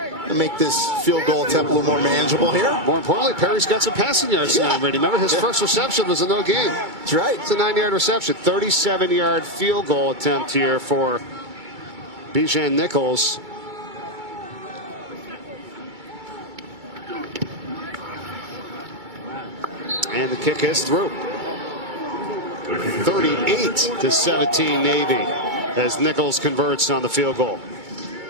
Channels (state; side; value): late; left; 2.3 ms